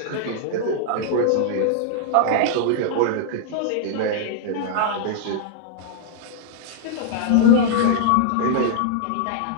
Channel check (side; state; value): both; different; correlation -0.01